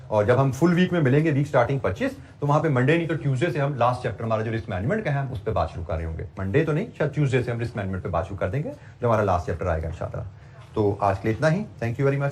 और जब हम फुल वीक में मिलेंगे वीक स्टार्टिंग 25, तो वहां पे मंडे नहीं तो ट्यूसडे से हम लास्ट चैप्टर हमारा जो रिस्क मैनेजमेंट का है उस पर बात शुरू कर रहे होंगे। मंडे तो नहीं, शायद ट्यूसडे से हम रिस्क मैनेजमेंट पे बात शुरू कर देंगे, जो हमारा लास्ट चैप्टर आएगा इंशाल्लाह। तो आज के लिए इतना ही। Thank you very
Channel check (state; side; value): identical; both; correlation 1.00